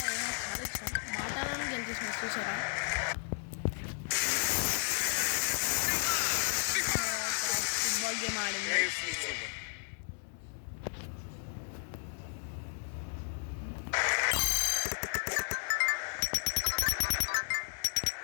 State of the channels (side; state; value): right; silent; 55 dB below the other